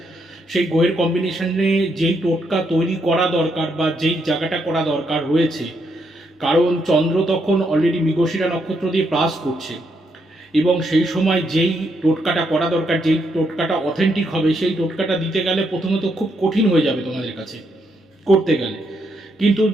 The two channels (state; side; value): normal; both; correlation 0.77